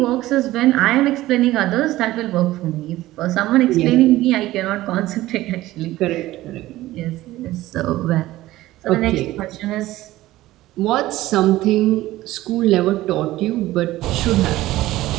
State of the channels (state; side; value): quieter; left; 16.4 dB